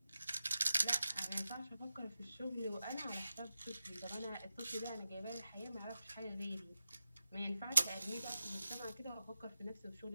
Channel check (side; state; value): both; inverted; correlation -0.91